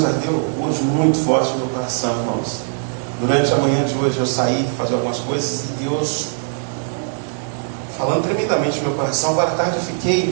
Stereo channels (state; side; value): silent; left; digital silence